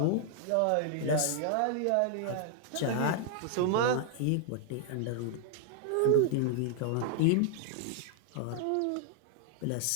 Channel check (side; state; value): both; different; correlation -0.01